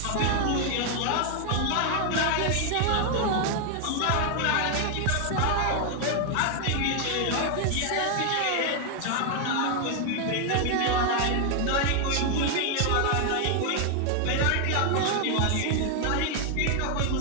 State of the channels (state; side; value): different; both; correlation 0.00